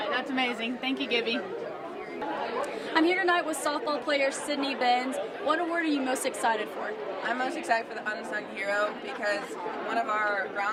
that's amazing. Thank you, Gibby. I'm here tonight with softball player Sydney Benz. What award are you most excited for? I'm most excited for the Unsung Hero because one of our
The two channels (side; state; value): both; identical; correlation 1.00